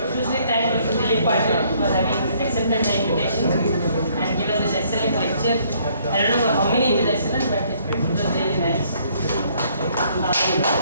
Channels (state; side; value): inverted; both; correlation -0.65